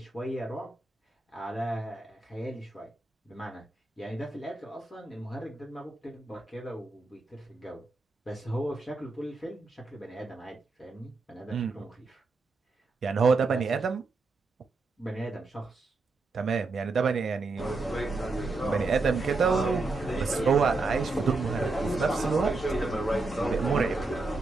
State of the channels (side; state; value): left; quieter; 3.6 dB